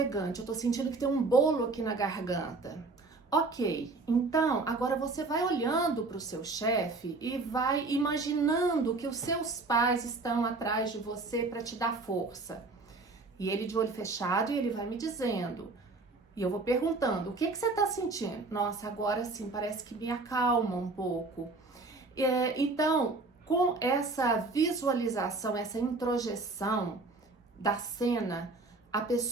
eu tô sentindo que tem um bolo aqui na garganta. Ok, então agora você vai olhando para o seu chefe e vai imaginando que os seus pais estão atrás de você para te dar força. E ele de olho fechado, e ele vai me dizendo: E eu vou perguntando, o que você está sentindo? Nossa, agora sim, parece que me acalma um pouco. Então, com essa visualização, essa introjeção da cena, a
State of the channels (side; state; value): left; quieter; 3.5 dB